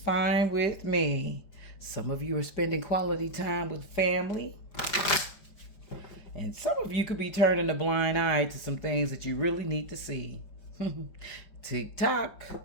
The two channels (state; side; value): late; right; 4.9 ms